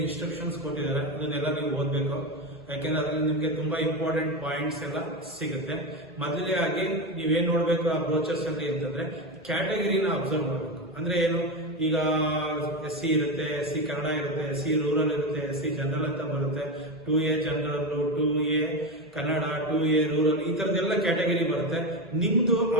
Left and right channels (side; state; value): both; normal; correlation 0.16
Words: ಇನ್ಸ್ಟ್ರಕ್ಷನ್ಸ್ ಕೊಟ್ಟಿದ್ದಾರೆ ಅದನ್ನೆಲ್ಲ ನೀವು ಓದ್ಬೇಕು. ಯಾಕೆಂದ್ರೆ ಅದ್ರಲ್ಲಿ ನಿಮ್ಗೆ ತುಂಬಾ ಇಂಪಾರ್ಟೆಂಟ್ ಪಾಯಿಂಟ್ಸ್ ಎಲ್ಲ ಸಿಗುತ್ತೆ. ಮೊದಲೇ ಆಗಿ ನೀವೇನ್ ನೋಡ್ಬೇಕು ಆ ಬ್ರೋಚರ್ಸ್ ಅಲ್ಲಿ ಅಂತಂದ್ರೆ ಕ್ಯಾಟಗರಿನ ಅಬ್ಸರ್ವ್ ಮಾಡಬೇಕು. ಅಂದ್ರೆ ಏನು, ಈಗ SC ಇರುತ್ತೆ, SC ಕನ್ನಡ ಇರುತ್ತೆ, SC ರೂರಲ್ ಇರುತ್ತೆ, SC ಜನರಲ್ ಅಂತ ಬರುತ್ತೆ, 2A general, 2A Kannada, 2A rural, ಈ ತರದೆಲ್ಲ ಕ್ಯಾಟಗರಿ ಬರುತ್ತೆ. ನಿಮ್ದು